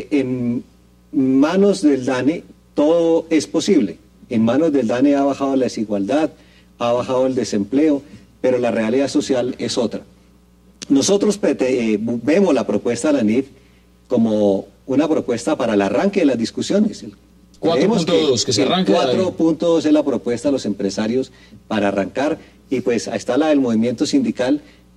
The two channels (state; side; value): identical; both; correlation 1.00